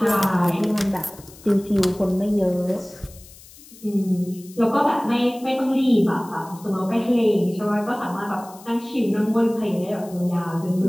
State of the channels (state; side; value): noise; left; hiss, 21 dB below the sound